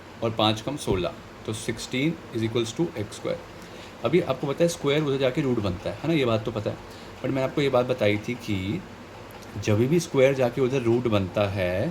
और 5 कम 16, तो 16 is equals to X square. अभी आपको पता है स्क्वायर उधर जाके रूट बनता है ना, ये बात तो पता है। बट मैंने आपको ये बात बताई थी कि जब भी स्क्वायर जाके उधर रूट बनता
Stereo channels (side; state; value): both; identical; correlation 1.00